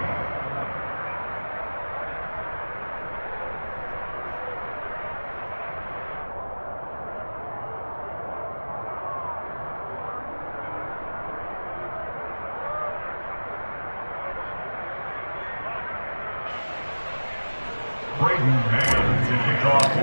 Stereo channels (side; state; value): both; inverted; correlation -1.00